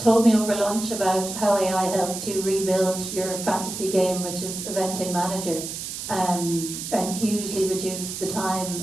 me over lunch about how AI helped you rebuild your fantasy game, which is Eventing Manager, and hugely reduce the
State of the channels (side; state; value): right; noise; hiss, 7 dB below the sound